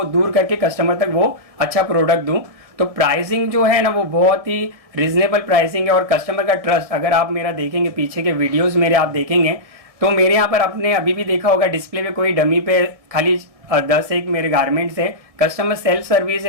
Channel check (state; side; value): late; left; 1.7 ms